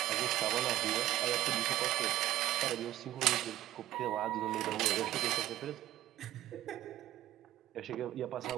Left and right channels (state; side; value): quieter; left; 14.1 dB